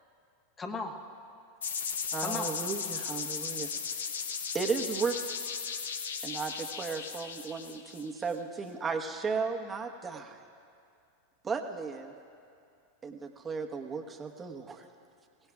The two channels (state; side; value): normal; both; correlation 0.30